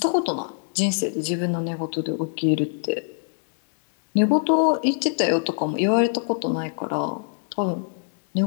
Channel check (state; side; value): silent; right; 63 dB below the other